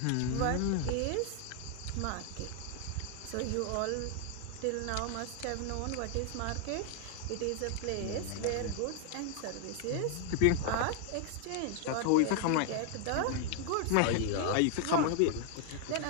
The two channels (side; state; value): both; different; correlation 0.00